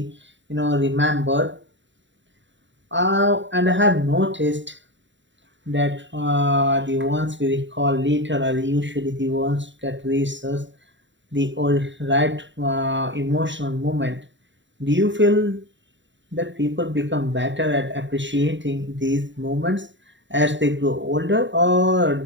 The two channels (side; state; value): left; late; 0.54 ms